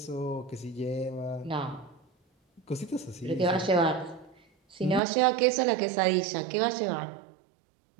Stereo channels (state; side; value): drops out; left; at 5.0 s